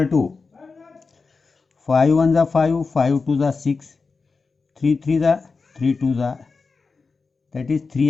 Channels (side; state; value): right; quieter; 4.4 dB